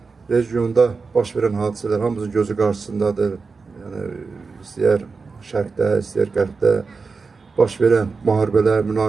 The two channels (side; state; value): left; quieter; 4.6 dB